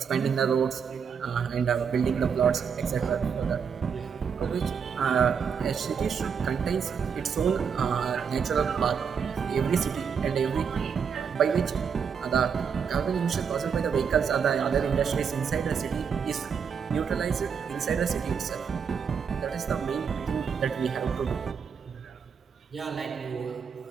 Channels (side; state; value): left; quieter; 6.7 dB